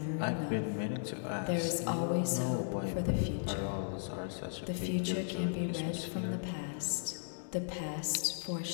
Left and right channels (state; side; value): silent; right; digital silence